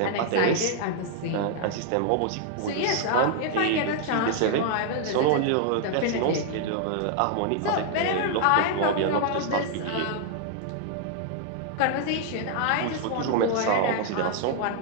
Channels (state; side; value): different; both; correlation 0.00